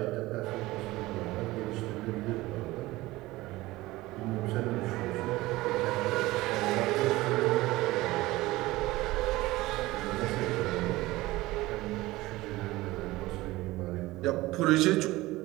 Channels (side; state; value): left; quieter; 18.9 dB